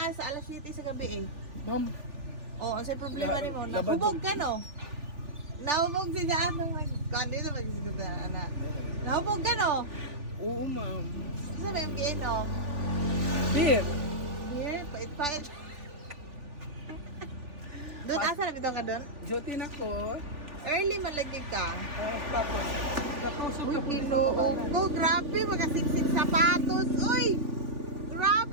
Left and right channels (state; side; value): late; left; 3.5 ms